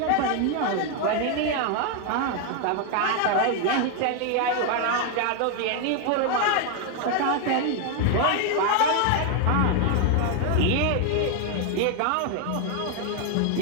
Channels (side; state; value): both; different; correlation 0.01